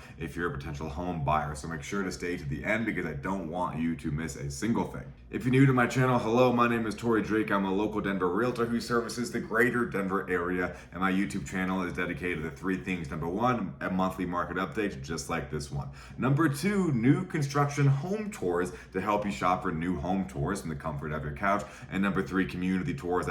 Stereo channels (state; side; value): identical; both; correlation 1.00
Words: if you're a potential home buyer. So make sure to stay to the end because I don't want you to miss a single thing. If you're new to my channel, hello, my name is Torrey Drake. I'm a local Denver realtor who services the greater Denver area, and my YouTube channel is dedicated to 3 things. Number 1, a monthly market update just like this one. Number 2, new construction home tours to help you shop for new home tours from the comfort of your couch. And number 3, community tours